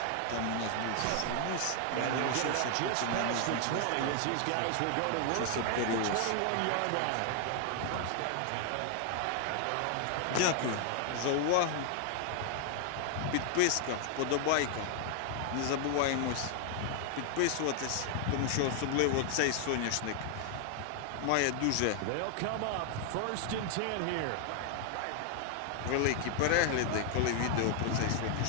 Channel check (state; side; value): different; both; correlation 0.00